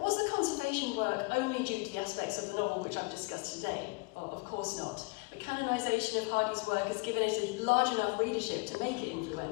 the conservation work only due to the aspects of the novel which I've discussed today? Well, of course not. The canonisation of Hardy's work has given it a large enough readership to make it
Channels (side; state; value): right; quieter; 27.9 dB